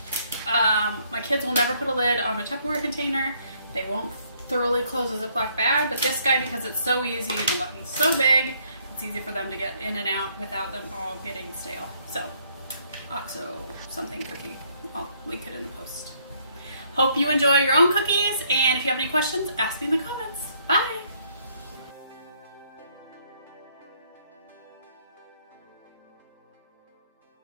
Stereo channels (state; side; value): inverted; both; correlation -0.67